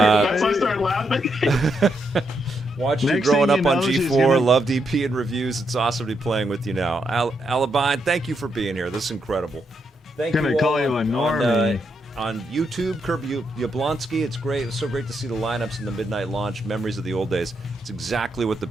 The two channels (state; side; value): normal; both; correlation 0.80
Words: why I started laughing. Watched you Next growing thing up you on know, she's G4, gonna- loved EP and reviews. It's awesome to be playing with you now. Alabine, thank you for being here. This is incredible. Thank Gonna you call all you a on, normie. on YouTube, Kirby Yablonsky. It's great. It was so great to see the lineups in the midnight launch. Memories of the old days. It's exactly what the